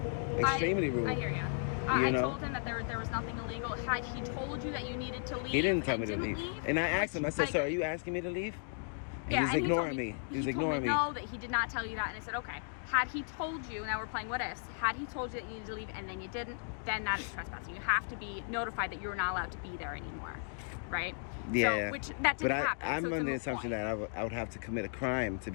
Extremely rude. I hear you. You I know? told him that there was nothing illegal. Had he told you that you needed to leave, He didn't tell and me to didn't leave. And I asked him, I said, like- "Sir, are you asking me to leave?" And Yeah, he was and ignoring told me. He was told ignoring me. No, that he did not tell you that, and I said, okay. Had he told you, now we're playing what ifs. Had he told you that you needed to leave and then you didn't, then that is trespassing. You have to be notified that you're not allowed to be there anymore, right? Yeah. So, which that didn't But happen. I'm so it's a under the moot assumption point. that I would have to commit a crime to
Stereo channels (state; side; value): silent; right; digital silence